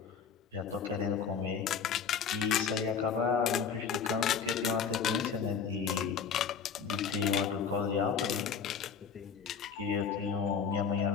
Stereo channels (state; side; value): quieter; right; 6.5 dB